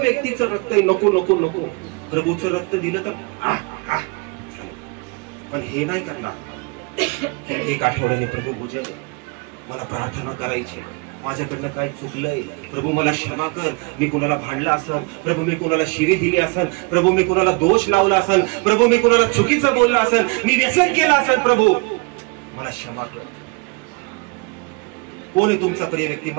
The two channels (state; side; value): quieter; left; 30.2 dB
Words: रक्त आहे, नको नको नको. प्रभूचं रक्त दिलं तर पण हे नाही करणार. एक आठवड्याने प्रभू पूजन, मला प्रार्थना करायची, माझ्याकडनं काय चुकलंय प्रभू मला क्षमा कर, मी कुणाला भांडला असन प्रभू, मी कुणाला शिवी दिली असन प्रभू, मी कुणाला दोष लावला असन प्रभू, मी कुणाला चुकीचं बोलला असन, मी व्यसन केलं असन प्रभू, मला क्षमा कर. कोण आहे तुमचा प्रिय व्यक्ती?